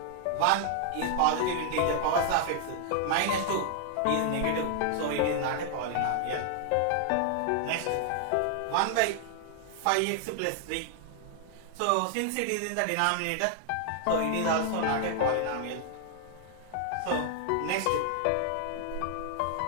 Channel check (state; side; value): different; both; correlation 0.00